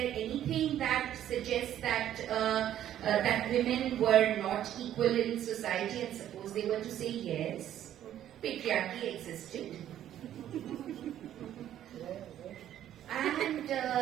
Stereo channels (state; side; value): quieter; left; 11.4 dB